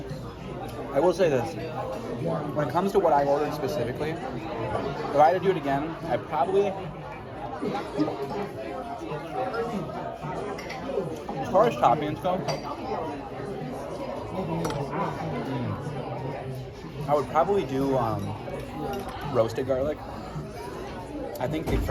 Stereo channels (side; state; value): both; identical; correlation 1.00